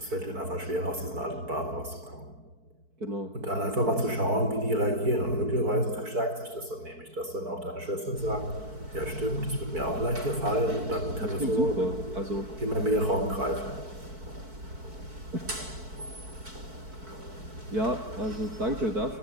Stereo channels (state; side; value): late; left; 4.6 ms